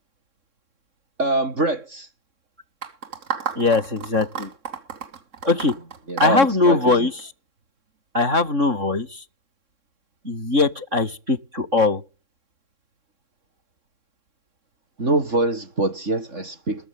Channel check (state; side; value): late; left; 3.6 ms